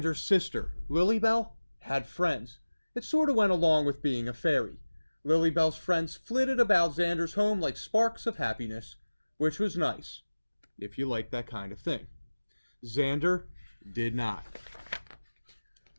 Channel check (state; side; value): inverted; both; correlation -1.00